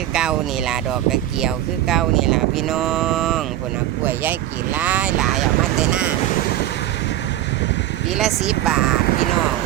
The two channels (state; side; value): quieter; left; 13.4 dB